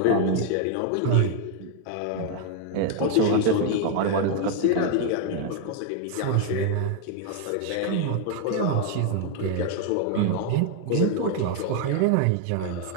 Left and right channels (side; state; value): both; different; correlation 0.00